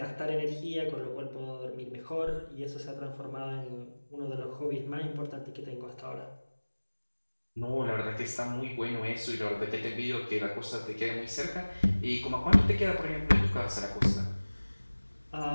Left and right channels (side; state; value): both; inverted; correlation -1.00